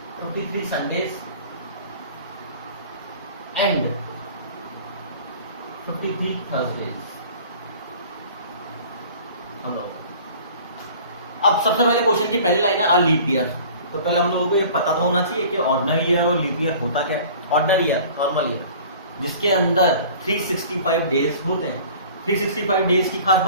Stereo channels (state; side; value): inverted; both; correlation -0.45